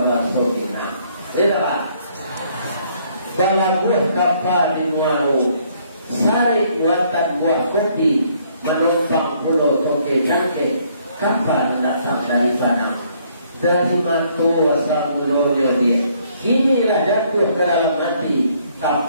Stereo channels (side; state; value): both; inverted; correlation -0.66